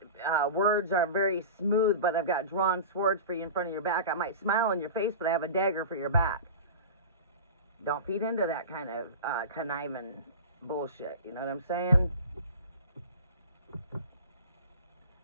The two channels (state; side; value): inverted; both; correlation -0.32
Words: are very smooth, but I've got drawn swords for you in front of your back. I might smile in your face, but I have a dagger for your back. Don't feed into that kind of conniving bullshit. You know what I'm saying?